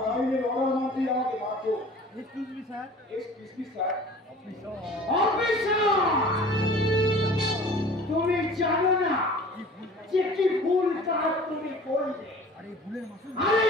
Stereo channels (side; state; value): both; normal; correlation 0.45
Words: আইনের অর্ডার মানতেই আমাকে বাধ্য। Excuse me sir. Sir. Officer, তুমি জানো না যে কি ভুল কাজ তুমি করলে। আর